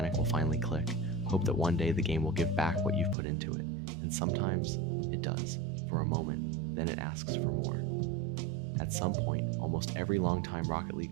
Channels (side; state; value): left; drops out; at 3.2 s